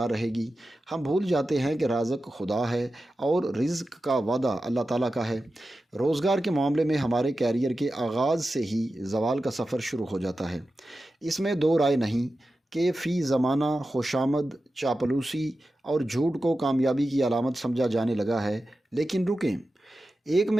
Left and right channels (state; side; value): normal; both; correlation 0.93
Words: رہے گی۔ ہم بھول جاتے ہیں کہ رازق خدا ہے اور رزق کا وعدہ اللہ تعالیٰ کا ہے۔ روزگار کے معاملے میں ہمارے کیریئر کے آغاز سے ہی زوال کا سفر شروع ہو جاتا ہے۔ اس میں دو رائے نہیں کہ فی زمانہ خوشامد، چاپلوسی اور جھوٹ کو کامیابی کی علامت سمجھا جانے لگا ہے، لیکن رکیں، ایک